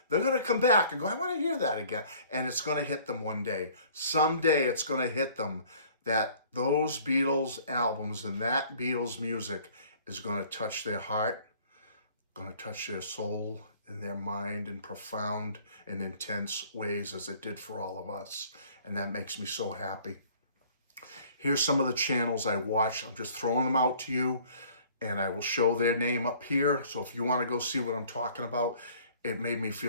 They're going to come back and go, I want to hear that again. And it's going to hit them one day. Someday it's going to hit them that those Beatles albums and that Beatles music is going to touch their heart, going to touch their soul and their mind in profound and intense ways as it did for all of us. And that makes me so happy. Here's some of the channels I watch. I'm just throwing them out to you, and I will show their name up here. So if you want to go see what I'm talking about, it made me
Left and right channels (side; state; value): both; inverted; correlation -0.54